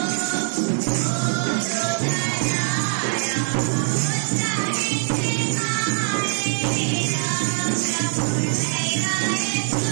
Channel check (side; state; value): left; silent; digital silence